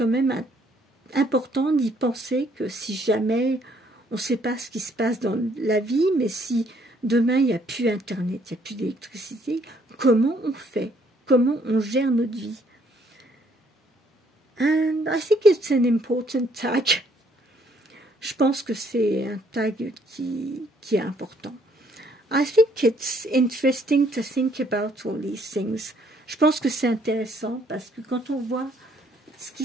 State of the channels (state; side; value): normal; both; correlation 0.66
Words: même important d'y penser que si jamais on ne sait pas ce qui se passe dans la vie, mais si demain il n'y a plus internet, il n'y a plus d'électricité, comment on fait? Comment on gère notre vie? And I think it's an important tag. Je pense que c'est un tag qui est important. I think it's interesting to think about all these things. Je pense que c'est intéressant parce que quand on voit ce qui